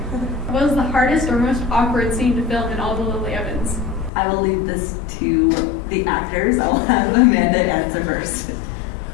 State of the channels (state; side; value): drops out; right; at 4.1 s